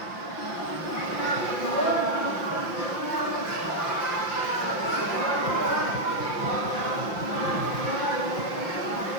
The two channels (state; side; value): late; right; 5.8 ms